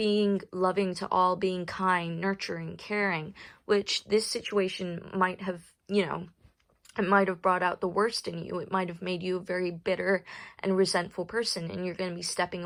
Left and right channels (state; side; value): identical; both; correlation 1.00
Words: loving to all, being kind, nurturing, caring, which this situation might have, it might have brought out the worst in you. It might have made you a very bitter and resentful person, and you're going to be stepping